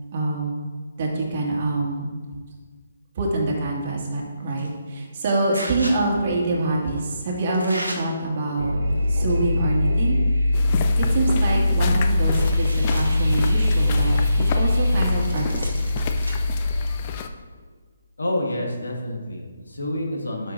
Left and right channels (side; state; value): both; inverted; correlation -0.81